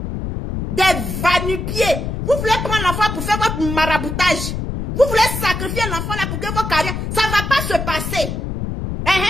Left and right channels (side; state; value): left; noise; rumble, 4 dB below the sound